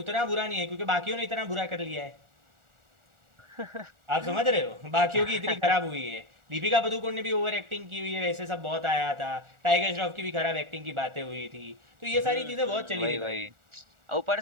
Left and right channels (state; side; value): late; left; 1.4 ms